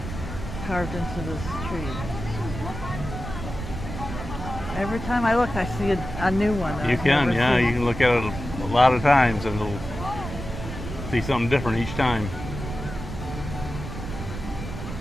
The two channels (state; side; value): noise; right; rumble, 8 dB below the sound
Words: this tree. Every time I look, I see a new one. You I've can, never yeah. seen. You can look at it a lot of times and it'll see something different each time.